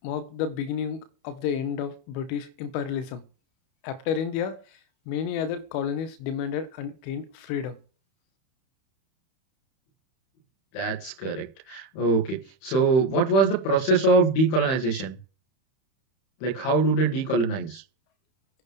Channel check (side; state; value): right; late; 31 ms